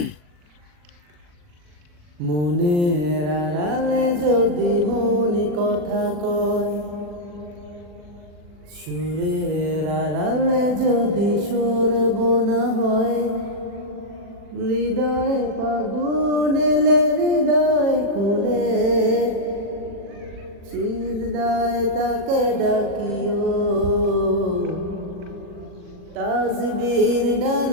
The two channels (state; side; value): late; left; 40 ms